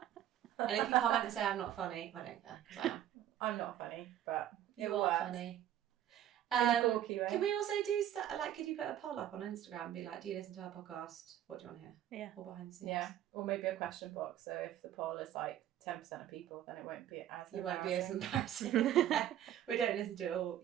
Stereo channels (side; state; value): left; quieter; 11.4 dB